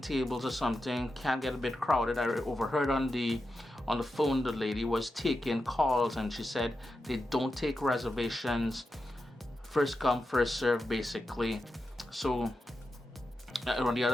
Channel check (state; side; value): normal; both; correlation 0.89